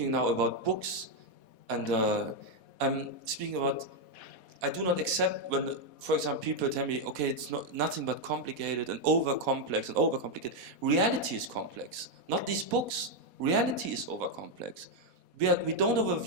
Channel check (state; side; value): late; left; 4.1 ms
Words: now about books, and I'm speaking about. I do not accept when, for example, people tell me, okay, it's nothing but complicated and over-complex and over-complicated. Reality is complex, not these books. Reality is over-complex. We don't